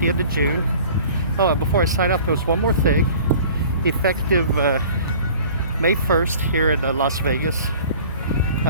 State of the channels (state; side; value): inverted; both; correlation -0.46